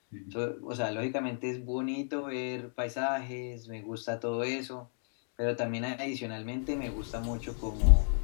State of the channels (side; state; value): right; silent; 56 dB below the other